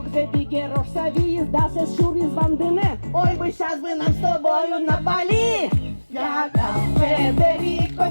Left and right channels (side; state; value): both; inverted; correlation -1.00